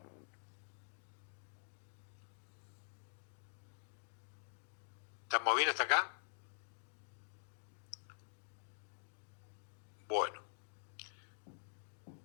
¿Estamos bien hasta acá? Bueno.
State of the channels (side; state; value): right; silent; digital silence